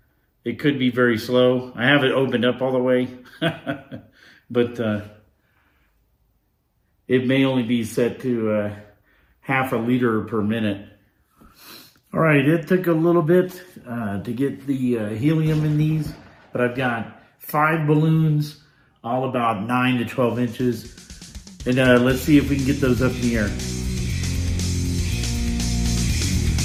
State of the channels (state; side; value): identical; both; correlation 1.00